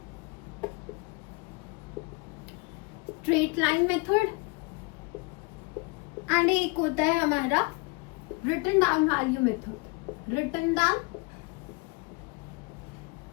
एंड एक होता है हमारा रिटन डाउन वैल्यू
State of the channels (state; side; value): quieter; right; 28.5 dB